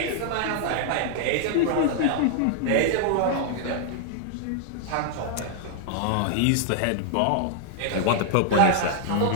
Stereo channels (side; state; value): both; different; correlation -0.01